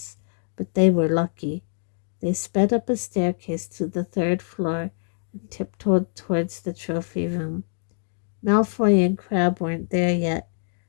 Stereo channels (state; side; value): silent; right; 59 dB below the other